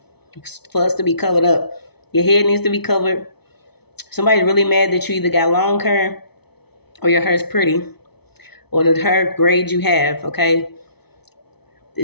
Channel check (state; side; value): late; right; 0.98 ms